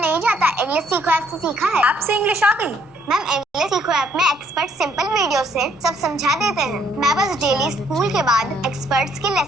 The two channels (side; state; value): both; normal; correlation 0.68